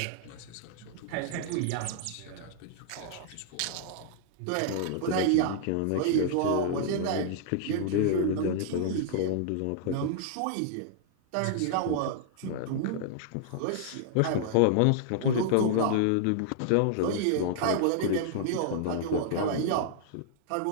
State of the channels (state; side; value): different; both; correlation -0.01